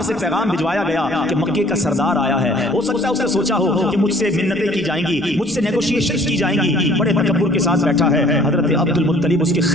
से पैगाम भिजवाया गया कि मक्के का सरदार आया है। हो सकता है उसने सोचा हो कि मुझसे मिन्नतें की जाएंगी, मुझसे नेगोशिएशन की जाएंगी, बड़े तकब्बुर के साथ बैठा है। हजरत अब्दुल मुत्तलिब उसके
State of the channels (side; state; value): left; noise; rumble, 26 dB below the sound